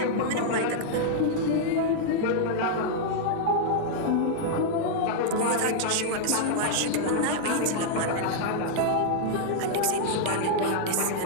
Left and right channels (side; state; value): both; different; correlation -0.01